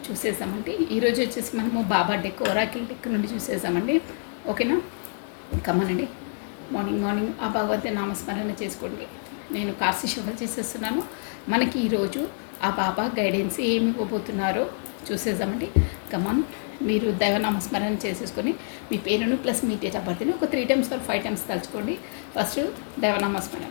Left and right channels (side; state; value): right; silent; digital silence